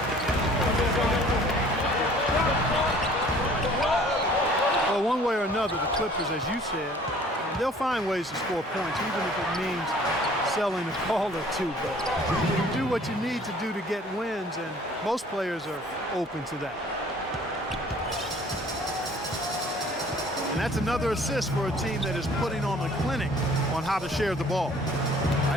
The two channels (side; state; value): both; normal; correlation 0.53